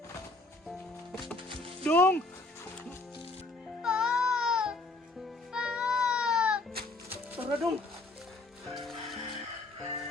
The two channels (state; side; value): quieter; right; 3.2 dB